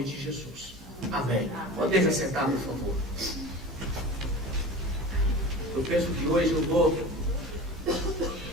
de Jesus. Amém. Pode assentar, por favor. Eu penso que hoje eu vou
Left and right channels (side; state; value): both; normal; correlation 0.34